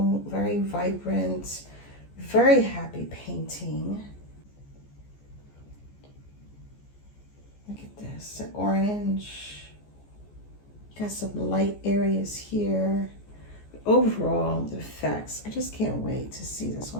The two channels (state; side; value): late; right; 14 ms